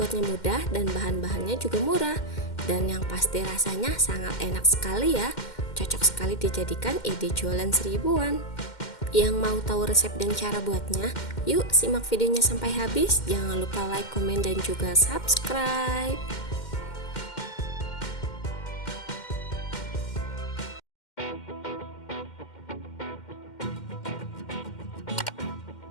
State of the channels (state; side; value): late; right; 2.1 ms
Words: mudah dan bahan-bahannya juga murah, dan yang pasti rasanya sangat enak sekali ya. Cocok sekali dijadikan ide jualan seribuan. Yang mau tahu resep dan cara buatnya, yuk simak videonya sampai habis. Jangan lupa like, komen, dan juga subscribe.